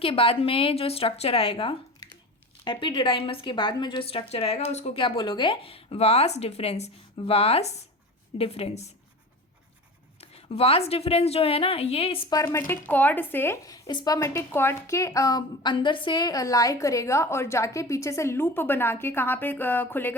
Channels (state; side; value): normal; both; correlation 0.33